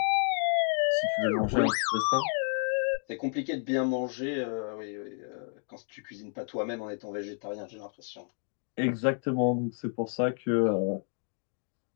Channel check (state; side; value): silent; right; 57 dB below the other